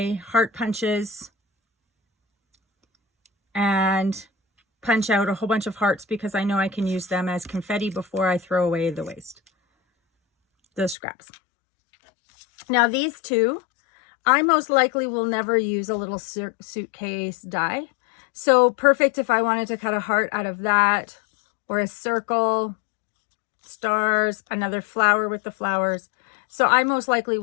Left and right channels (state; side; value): drops out; right; at 11.0 s